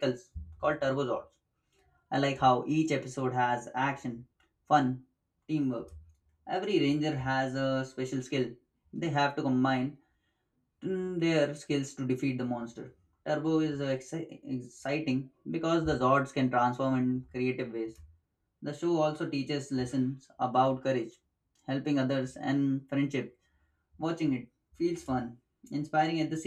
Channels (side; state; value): both; identical; correlation 1.00